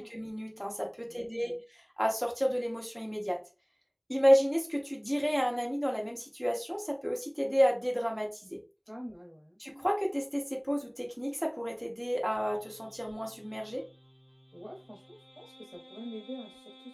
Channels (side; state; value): both; identical; correlation 1.00